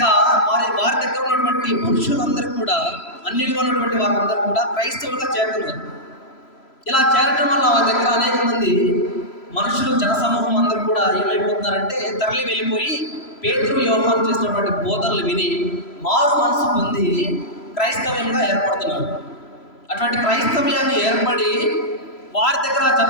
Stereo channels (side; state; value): right; late; 3.0 ms